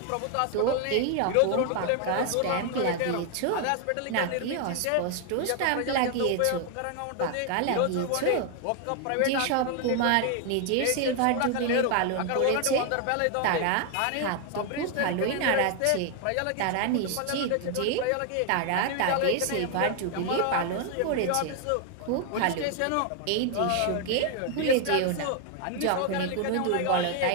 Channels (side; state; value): both; different; correlation 0.00